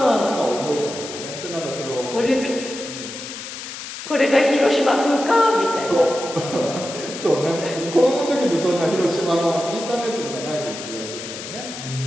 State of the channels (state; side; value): noise; left; hiss, 10 dB below the sound